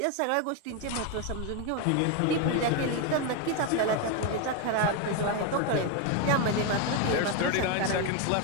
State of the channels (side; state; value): both; different; correlation 0.02